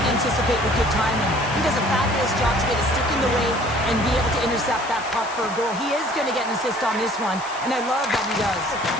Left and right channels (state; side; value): noise; left; hiss, 15 dB below the sound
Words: anticipate with good timing. He does a fabulous job to get a stick in the way and be able to intercept that puck for a goal. He is going to get an assist on this one, and I love that he does.